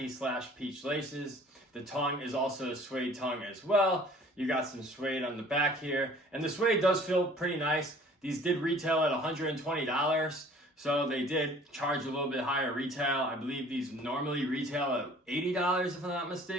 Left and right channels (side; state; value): both; normal; correlation 0.51